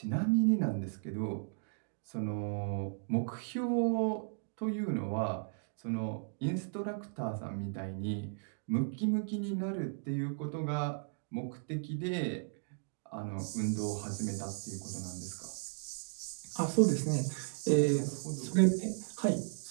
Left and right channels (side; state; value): left; silent; digital silence